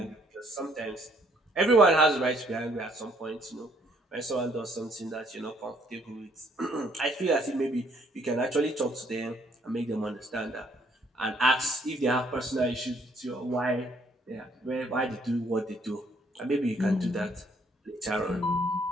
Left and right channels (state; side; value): normal; both; correlation 0.66